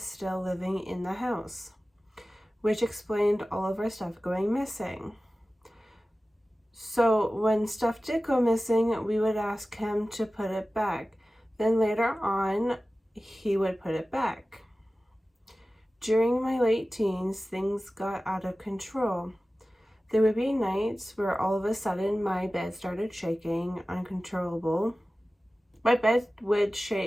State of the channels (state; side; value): normal; both; correlation 0.96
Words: still living in the house, which explained all of our stuff going missing. So when stuff did go missing, we would ask him to put it back. Then later on, he would put it back. During my late teens, things got out of control. There would be nights where all of a sudden my bed started shaking uncontrollable. My bed would